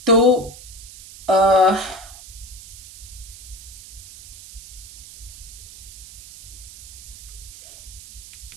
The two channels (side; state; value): right; noise; hiss, 16 dB below the sound